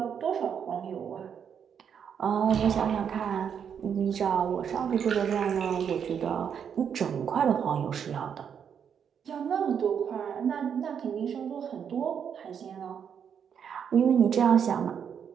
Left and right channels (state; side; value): quieter; left; 7.7 dB